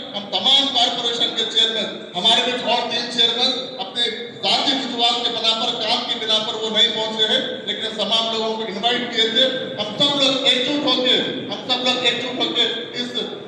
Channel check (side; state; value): both; identical; correlation 1.00